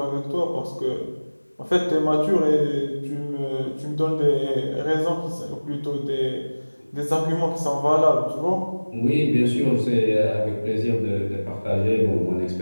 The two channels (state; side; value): inverted; both; correlation -1.00